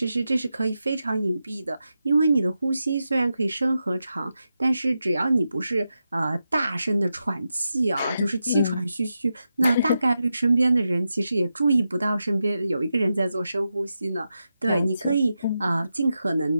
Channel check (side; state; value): both; inverted; correlation -0.88